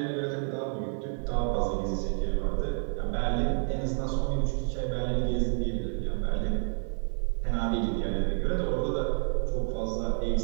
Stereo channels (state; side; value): silent; left; 58 dB below the other